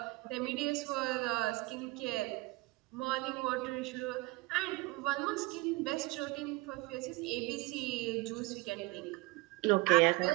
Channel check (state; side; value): quieter; left; 22.9 dB